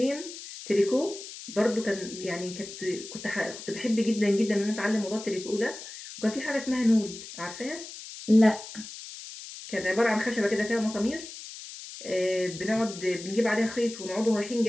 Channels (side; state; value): left; noise; hiss, 12 dB below the sound